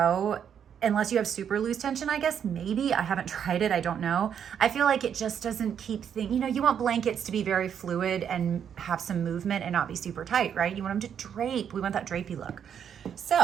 unless you have super loose tension, I guess, maybe. I haven't tried it, I don't know. I feel like it just doesn't keep things, you want blankets to be very fluid and have some movement and not be super tight, right? You want them to drape. We want that drapey look.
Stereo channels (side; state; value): left; quieter; 8.3 dB